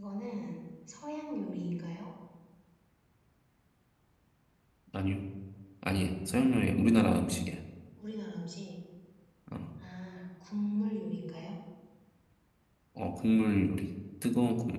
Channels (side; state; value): both; identical; correlation 1.00